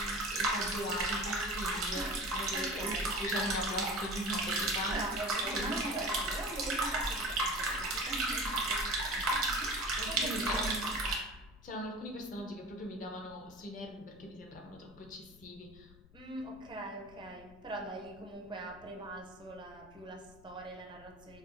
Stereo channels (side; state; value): left; noise; rumble, 22 dB below the sound